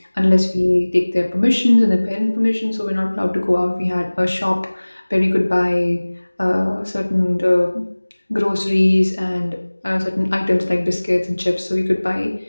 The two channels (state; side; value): inverted; both; correlation -1.00